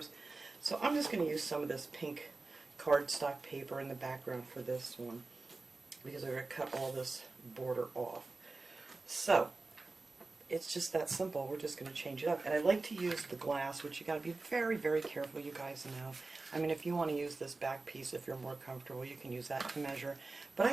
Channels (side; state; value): left; quieter; 3.6 dB